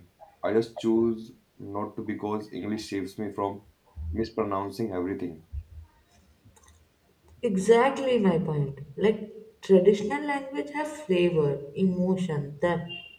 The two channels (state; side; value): identical; both; correlation 1.00